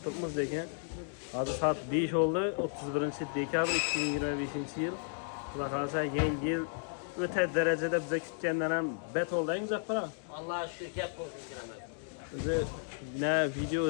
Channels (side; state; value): right; silent; digital silence